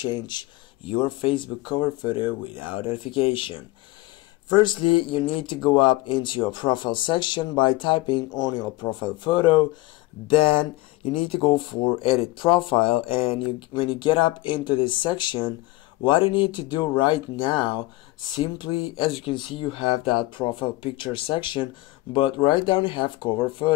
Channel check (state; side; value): quieter; right; 19.4 dB